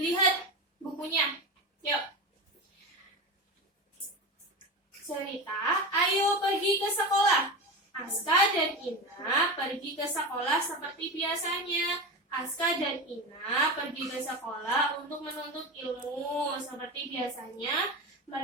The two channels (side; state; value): both; normal; correlation 0.23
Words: bukunya. Yuk. Cerita, ayo pergi ke sekolah. Aska dan Ina pergi ke sekolah seperti biasanya. Aska dan Ina pergi ke sekolah untuk menuntut ilmu. Seperti biasanya,